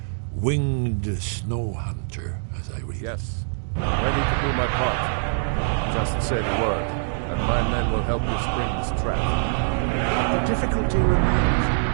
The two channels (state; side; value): silent; left; digital silence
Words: Winged snow hunter, as I read. Yes. Ready to do my part. Just say the word, and my men will help you spring this trap. The difficulty